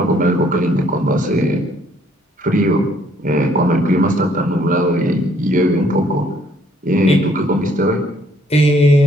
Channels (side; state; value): both; normal; correlation 0.64